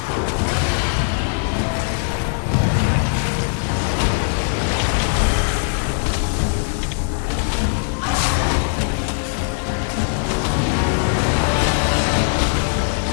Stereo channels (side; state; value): right; silent; digital silence